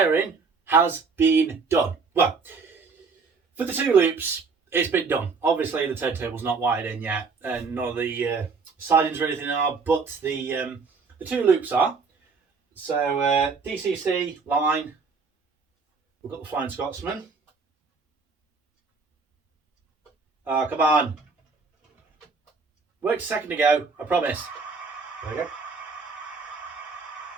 has been done. Well, for the two loops, it's been done. Obviously the turntable's not wired in yet, and none of the sidings or anything are, but the two loops are. So DCC line, we've got the Flying Scotsman. Oh, come on. Worked a second ago, I promise. There we go.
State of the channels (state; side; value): quieter; left; 4.7 dB